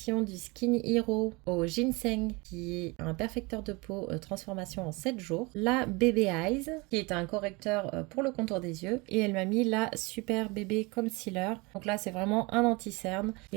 du Skin Hero au ginseng, qui est un perfecteur de peau transformation en 7 jours. La Baby Eyes, qui est un correcteur pour le contour des yeux. Et elle m'a mis la Super Bébé Concealer. Donc là, c'est vraiment un anti-cerne. Et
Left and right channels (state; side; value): quieter; left; 26.1 dB